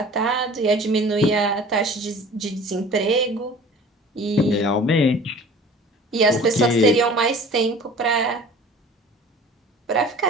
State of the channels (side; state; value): both; normal; correlation 0.45